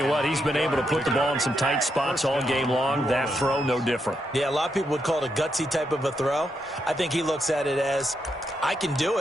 what, he's been able to put the ball in some tight spots all game long. That throw, no different. Yeah, a lot of people would call it a gutsy type of a throw. I think he looks at it as, I can do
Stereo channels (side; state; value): both; normal; correlation 0.81